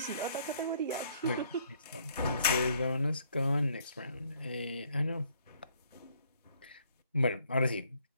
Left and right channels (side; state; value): both; inverted; correlation -0.65